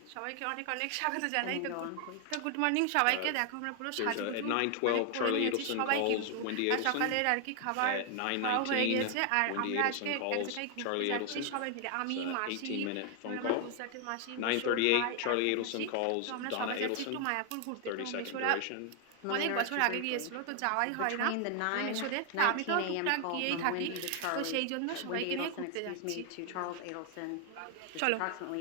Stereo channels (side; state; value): both; different; correlation 0.00